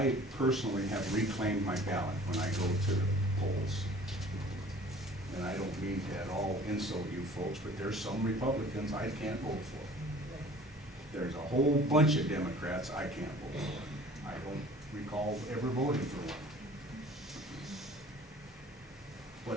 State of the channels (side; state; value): both; normal; correlation 0.48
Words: personally have reclaimed my ballot when I go to the polls. And I don't mean to at all insult you folks, but there's some Republicans I can't vote for. There's a whole bunch of Democrats I can't vote for. I don't recall ever voting for one.